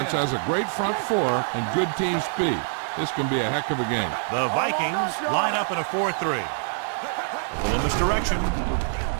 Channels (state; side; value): silent; left; 62 dB below the other